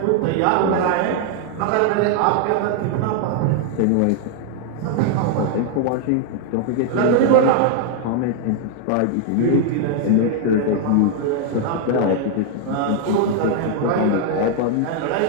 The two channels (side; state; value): both; different; correlation 0.00